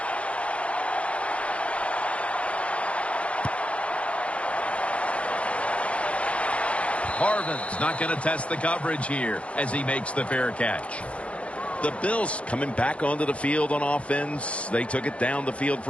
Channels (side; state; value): right; late; 0.062 ms